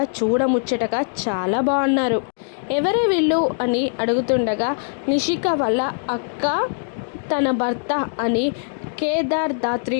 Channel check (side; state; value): right; silent; digital silence